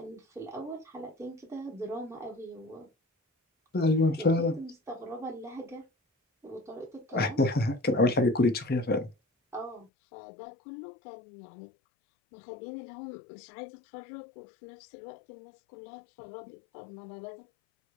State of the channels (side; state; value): right; drops out; at 9.9 s